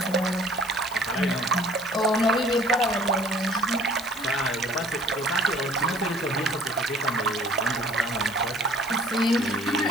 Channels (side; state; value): left; noise; hiss, 16 dB below the sound